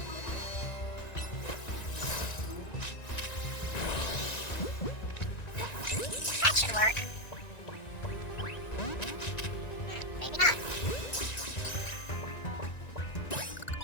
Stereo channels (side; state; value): right; late; 1.9 ms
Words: That should work. Maybe not.